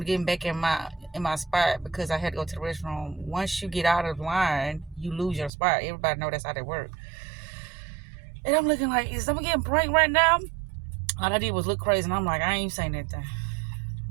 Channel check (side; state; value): left; drops out; at 5.5 s